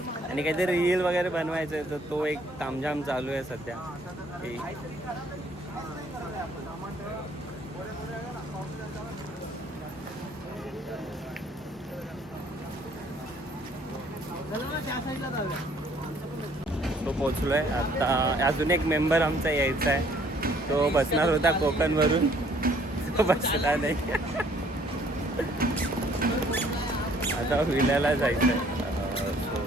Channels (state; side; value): normal; both; correlation 0.60